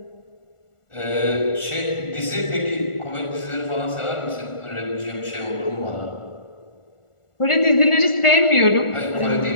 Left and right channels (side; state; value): right; late; 1.4 ms